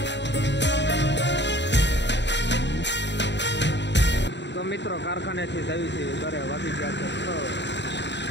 તો મિત્રો કારખાનેથી જવી છે ઘરે. વાગી ગયા છે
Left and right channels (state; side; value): late; right; 0.52 ms